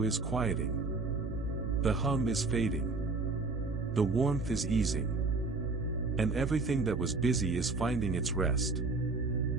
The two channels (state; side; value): quieter; left; 3.7 dB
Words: is quieting. The hum is fading. The warmth is easing. And everything that was busy is finding its rest.